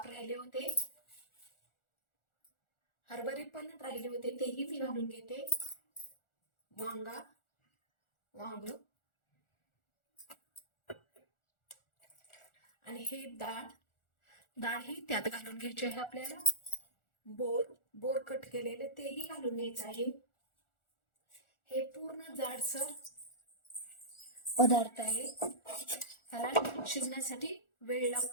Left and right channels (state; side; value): late; right; 1.4 ms